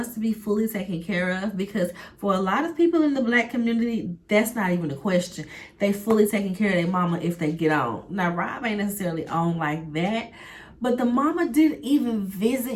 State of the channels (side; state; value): both; identical; correlation 1.00